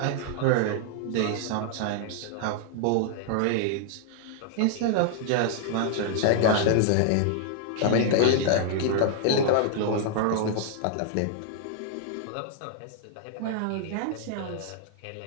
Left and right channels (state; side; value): different; both; correlation 0.00